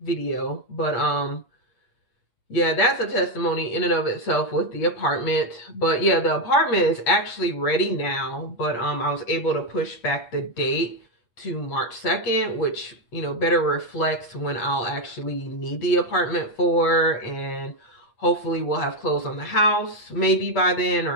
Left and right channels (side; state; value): right; late; 8.4 ms